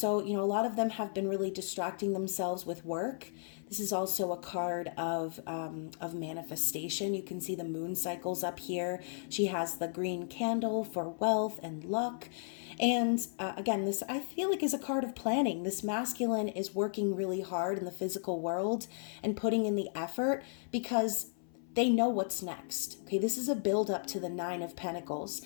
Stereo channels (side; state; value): right; silent; 55 dB below the other